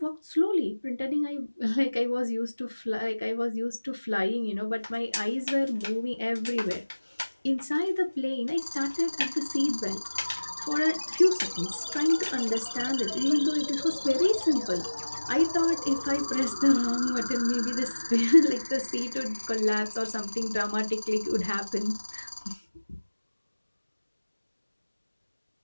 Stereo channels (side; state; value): both; inverted; correlation -1.00